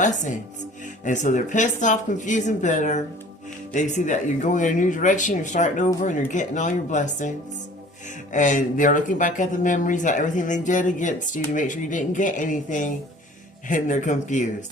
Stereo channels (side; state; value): both; normal; correlation 0.48